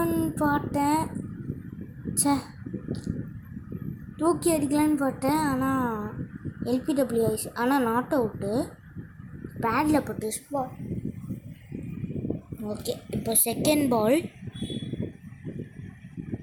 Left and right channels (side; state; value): both; identical; correlation 1.00